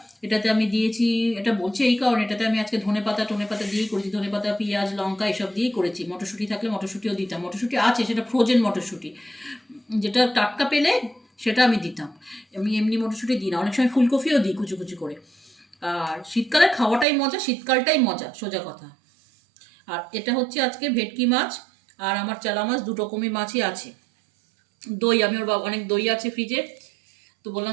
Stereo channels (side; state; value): left; drops out; at 17.1 s